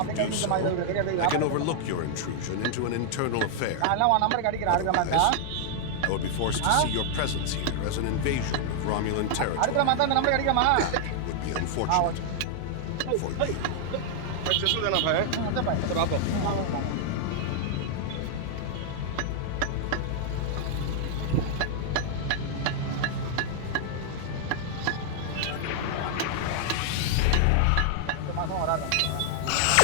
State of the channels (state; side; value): different; both; correlation -0.01